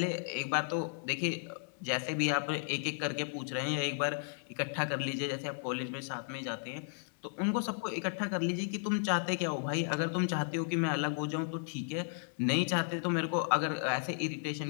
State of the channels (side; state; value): right; silent; 55 dB below the other